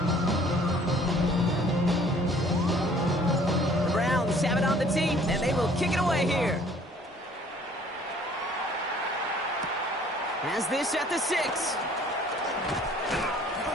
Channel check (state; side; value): normal; both; correlation 0.56